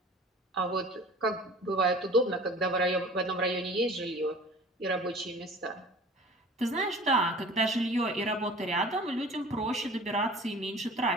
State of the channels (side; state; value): both; normal; correlation 0.44